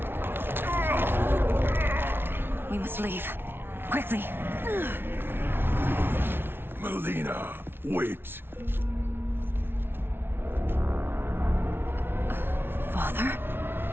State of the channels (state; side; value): late; left; 0.11 ms